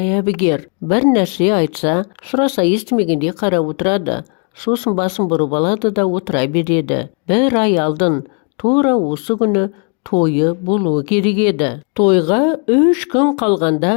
әбігер. Бір нәрсе айтса, сұраса естімегенде қарап отырады. Сосын басын бұрып алады да отыра береді. Бір ай алдын, тура осы күні тойы болуы керек еді. Тойға 3 күн қалғанда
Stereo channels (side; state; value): right; quieter; 39.0 dB